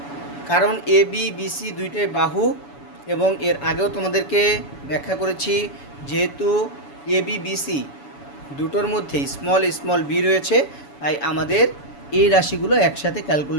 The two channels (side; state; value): right; late; 7.0 ms